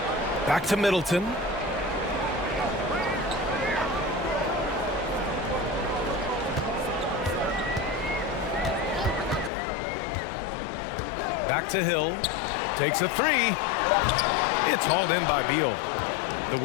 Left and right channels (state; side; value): drops out; right; at 9.5 s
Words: Back to Middleton. Back to Hill. Takes a three. It's hauled in by Beal. The